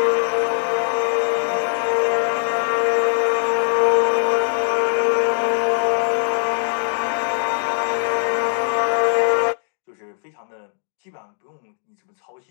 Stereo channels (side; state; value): right; silent; digital silence